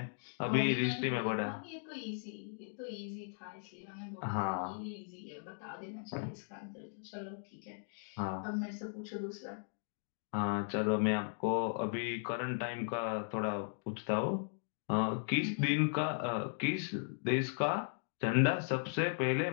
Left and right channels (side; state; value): right; silent; digital silence